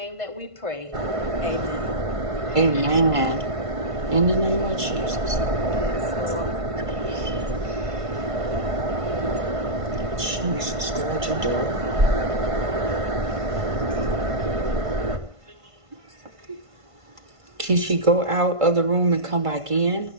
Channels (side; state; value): left; late; 1.5 ms